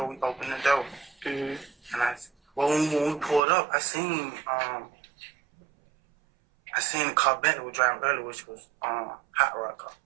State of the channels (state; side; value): drops out; left; at 3.4 s